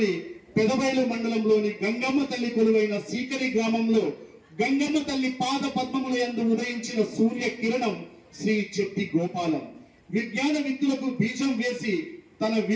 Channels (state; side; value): identical; both; correlation 1.00